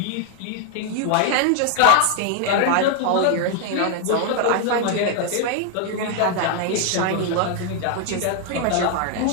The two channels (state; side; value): different; both; correlation 0.00